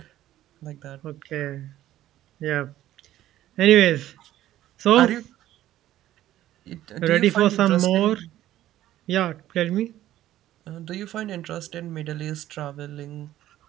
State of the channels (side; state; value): left; quieter; 13.6 dB